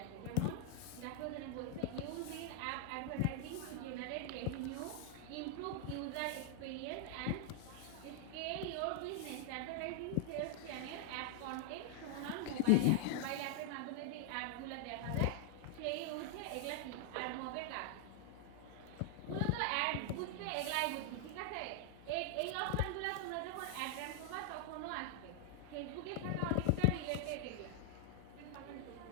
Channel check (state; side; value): different; both; correlation 0.00